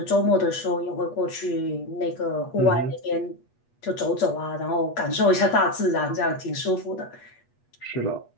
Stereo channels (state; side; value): late; right; 8.3 ms